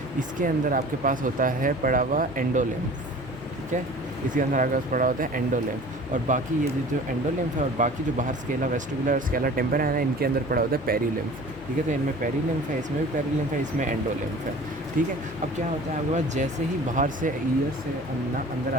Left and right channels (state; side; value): noise; left; hum, 17 dB below the sound